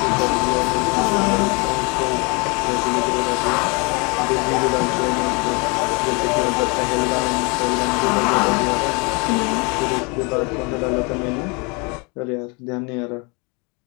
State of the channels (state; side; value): quieter; right; 30.5 dB